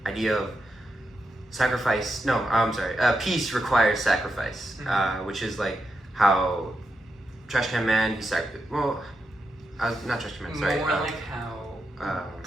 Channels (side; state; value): both; normal; correlation 0.85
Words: idea of sacrifice. No, I'm sorry. Peace requires sacrifice, which is like how Trash Can Man not Trash Can Man. Sorry. More like how